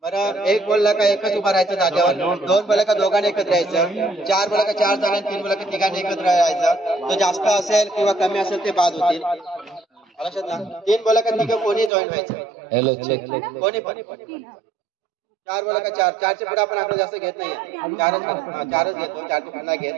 बरं, 1 बोलला का एकच उभा राहायचं जागेवर, 2 बोलला का दोघांनी एकत्र यायचं, 4 बोलला का 4 जणांनी, 3 बोलला का तिघांनी एकत्र यायचं. तो जास्त असेल किंवा कमी असेल ते बाद होतील, लक्षात ना. 3 बोला का तिघं कोणी जॉईन व्हायचं, कोणी पण. 4 बोला का 4, 4च्या पुढे आपण आकडे जास्त घेत नाही, 4च घेतो, 4च्या पुढे नाही घेत.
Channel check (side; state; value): left; drops out; at 11.9 s